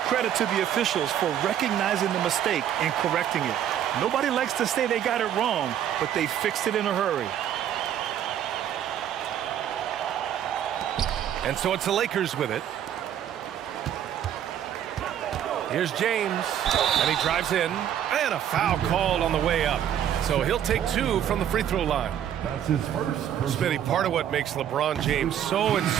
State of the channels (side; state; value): left; quieter; 10.2 dB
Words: credit to the officials for recognizing the mistake and correcting it. Nobody likes to say they got it wrong, but they fixed it in a hurry. And so it's the Lakers with it. Here's James, and he drives in, and a foul called on the way up. So he'll take 2 from the free throw line. That's his first. Smitty, part of what makes LeBron James so